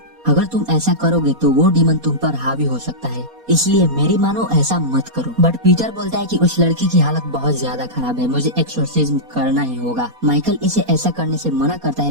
अगर तुम ऐसा करोगे तो वो डीमन तुम पर हावी हो सकता है, इसलिए मेरी मानो ऐसा मत करो। बट पीटर बोलता है कि उस लड़की की हालत बहुत ज्यादा खराब है, मुझे एक्सोर्सिज्म करना ही होगा। माइकल इसे ऐसा करने से मना करता है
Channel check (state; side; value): late; left; 4.2 ms